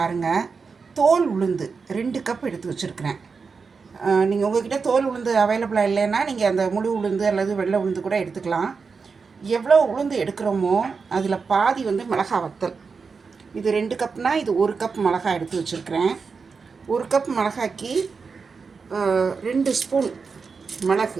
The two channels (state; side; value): quieter; left; 5.1 dB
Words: தோல் உளுந்து 2 கப் எடுத்து வச்சுருக்கிறேன். நீங்கள் உங்கள்கிட்ட தோல் உளுந்து அவைலபிளாக இல்லைன்னா நீங்கள் அந்த முழு உளுந்து அல்லது வெள்ளை உளுந்து கூட எடுத்துக்கலாம். எவ்வளோ உளுந்து எடுக்கிறோமோ அதில் பாதி மிளகாய் வத்தல். இது 2 கப்னால் இது 1 கப் மிளகாய் எடுத்து வச்சுருக்கிறேன். 1 கப் மிளகாய்க்கு 2 ஸ்பூன்